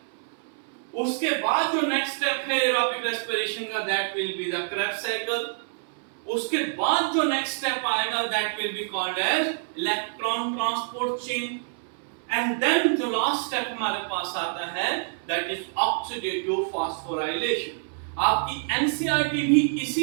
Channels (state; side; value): silent; left; 60 dB below the other